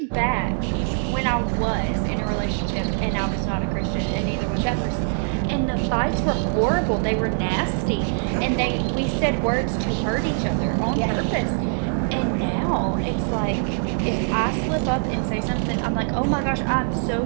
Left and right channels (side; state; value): left; silent; 59 dB below the other